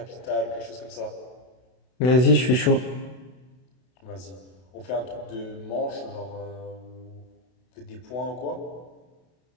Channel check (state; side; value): late; right; 32 ms